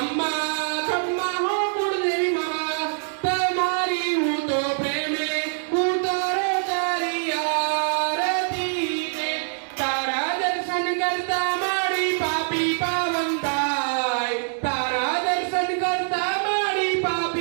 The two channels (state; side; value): silent; left; digital silence